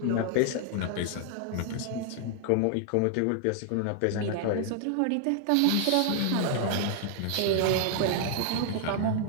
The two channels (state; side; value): different; both; correlation 0.00